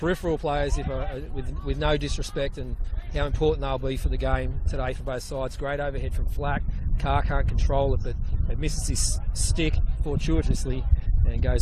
players, with no disrespect, and how important they'll be for the game today for both sides. Great overhead from Flack. Carr can't control it, but it misses his stick fortuitously and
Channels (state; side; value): identical; both; correlation 1.00